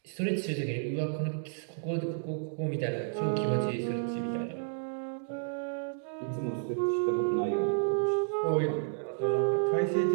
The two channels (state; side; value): silent; left; digital silence